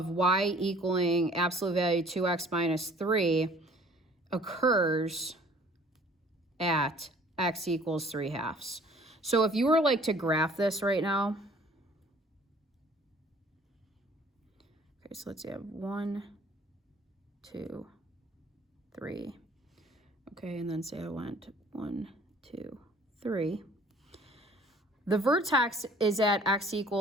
y equaling absolute value 2x minus 3 occurs at x equals 3/2. So if you were like to graph this right now, okay, so let's see, I have 1, 2, 3. Okay, and then say I went 1, 2, 3. The vertex is at x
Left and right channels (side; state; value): both; normal; correlation 0.53